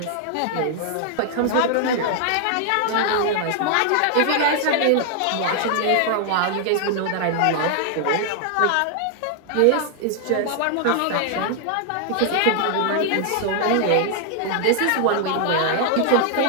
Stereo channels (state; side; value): different; both; correlation 0.00